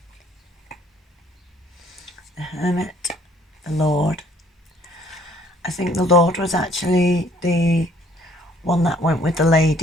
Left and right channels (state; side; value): normal; both; correlation 0.61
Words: the Hermit, the Lord. I think the Lord was actually the one that went with the